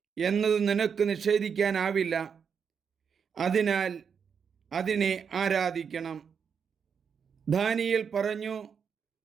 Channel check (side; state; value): left; quieter; 6.7 dB